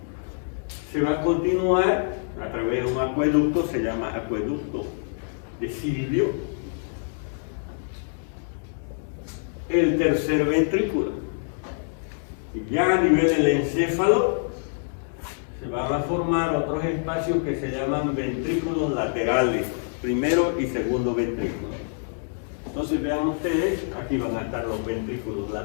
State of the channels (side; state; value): right; silent; digital silence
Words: se va a continuar a través de un acueducto, se llama acueducto de Silvio, el tercer ventrículo. Ya a nivel del encéfalo se van a formar otros espacios que se llaman ventrículos laterales, primero y segundo ventrículo. Entonces vean ustedes, aquí van a estar los ventrículos